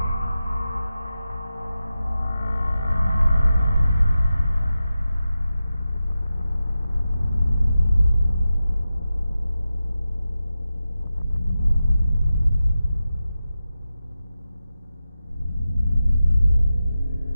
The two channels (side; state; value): both; inverted; correlation -0.92